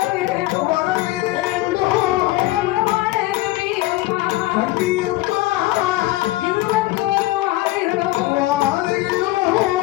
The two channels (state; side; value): quieter; right; 18.0 dB